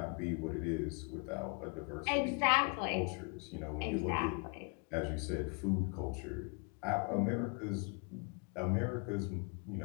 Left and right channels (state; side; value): quieter; right; 34.4 dB